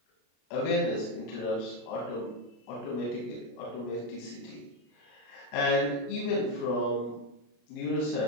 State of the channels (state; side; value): late; right; 33 ms